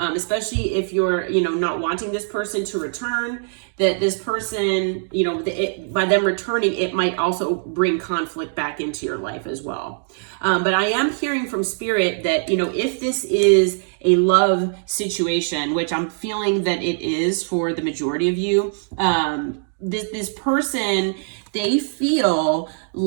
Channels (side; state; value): left; silent; 64 dB below the other